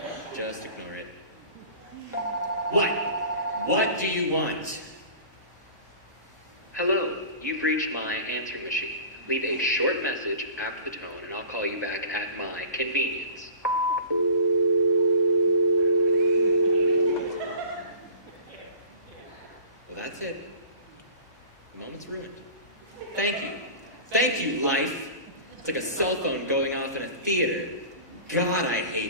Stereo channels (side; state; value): both; inverted; correlation -0.40